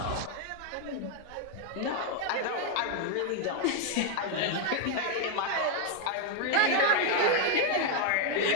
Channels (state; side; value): different; both; correlation 0.00